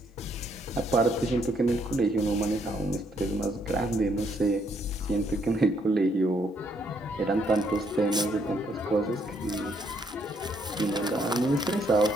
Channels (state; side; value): normal; both; correlation 0.71